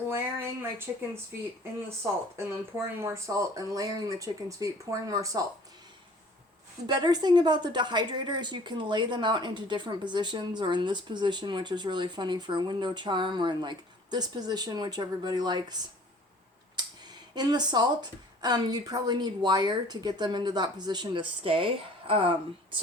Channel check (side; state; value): both; normal; correlation 0.51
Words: my chicken's feet in the salt, and then pouring more salt, and layering the chicken's feet, pouring more salt. The better thing about the dehydrator is you can lay them out into different positions, or in this position, which is really funny for a window charm, or in like this position, which everybody likes. In the salt, you'd probably need wire to get them into that position to stay.